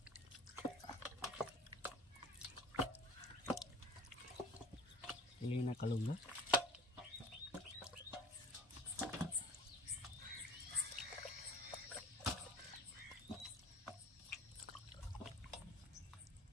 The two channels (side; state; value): both; normal; correlation 0.43